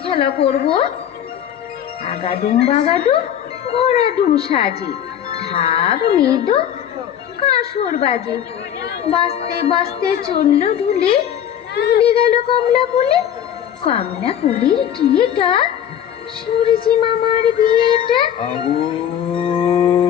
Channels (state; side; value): quieter; right; 9.8 dB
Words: খেলা করব। আগাডুম বাগাডুম ঘোড়াডুম সাজে, ঢাক মৃদু কাঁসর বাজে, বাজতে বাজতে চলল ঢুলে, ঢুলে গেল কমলা ফুলে, কমলা ফুলের টিয়েটা সূর্যি মামার বিয়েটা।